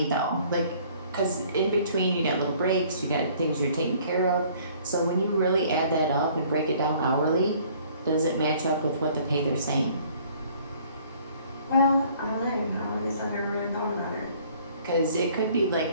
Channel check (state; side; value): inverted; both; correlation -0.57